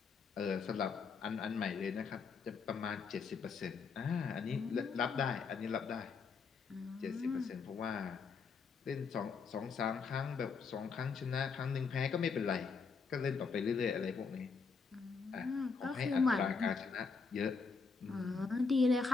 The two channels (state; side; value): quieter; right; 5.1 dB